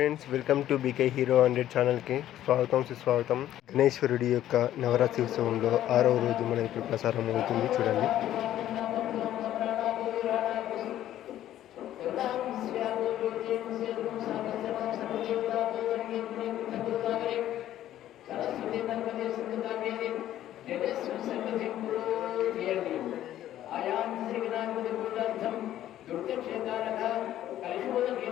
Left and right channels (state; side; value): quieter; right; 12.5 dB